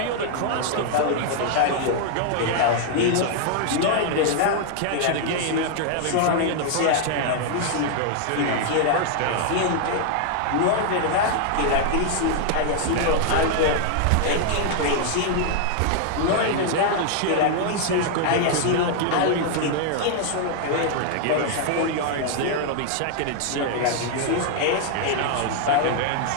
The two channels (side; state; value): both; different; correlation 0.00